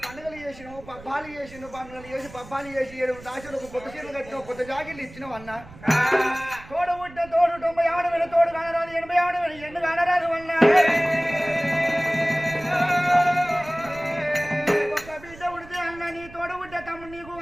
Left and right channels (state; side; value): noise; right; rumble, 19 dB below the sound